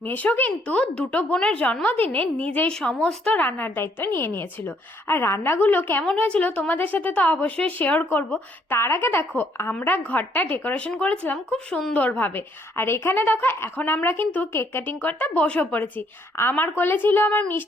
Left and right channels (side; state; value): both; normal; correlation 0.68